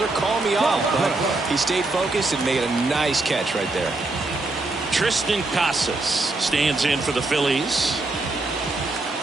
Call me off. But he stayed focused and made a nice catch right there. Tristan Casas stands in for the Phillies.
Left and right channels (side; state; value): left; quieter; 3.1 dB